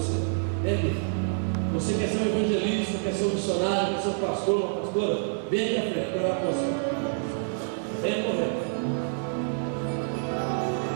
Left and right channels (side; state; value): left; silent; 60 dB below the other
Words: Vem aqui. Você quer ser um evangelista, quer ser um missionário, quer ser um pastor, uma pastora? Vem aqui à frente, quero falar com você. Vem correndo.